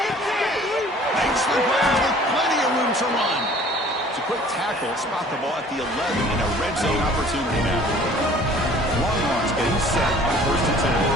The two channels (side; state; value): both; normal; correlation 0.51